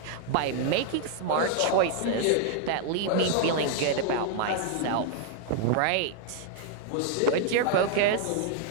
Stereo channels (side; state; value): both; different; correlation 0.00